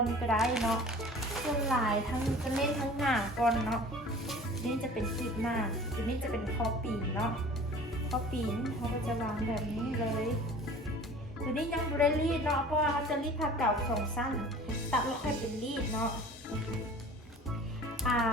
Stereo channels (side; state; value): both; normal; correlation 0.44